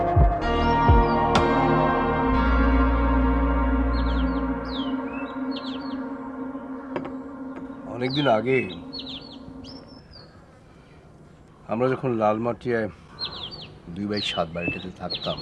অনেকদিন আগে আমরা যখন লালমাটিয়ায় 2/7 বাড়িটাতে থাকতাম,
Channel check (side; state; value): both; identical; correlation 1.00